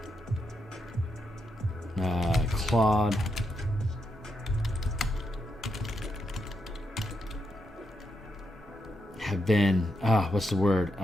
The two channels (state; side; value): normal; both; correlation 0.83